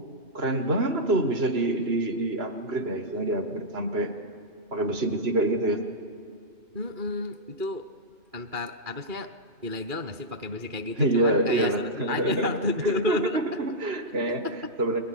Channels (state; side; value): late; left; 2.4 ms